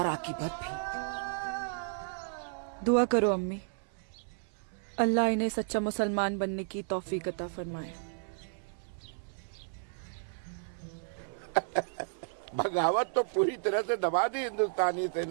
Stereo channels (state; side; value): silent; left; 56 dB below the other